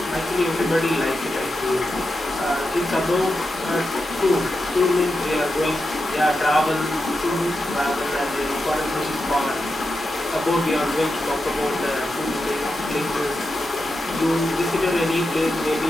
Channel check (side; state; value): both; normal; correlation 0.88